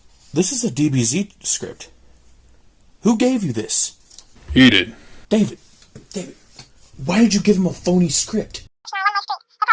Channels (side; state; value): both; identical; correlation 1.00